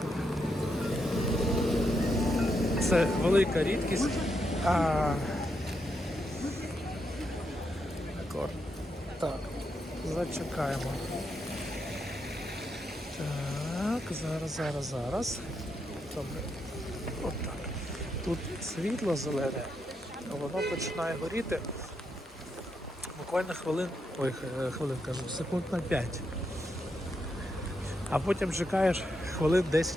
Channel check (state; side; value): normal; both; correlation 0.82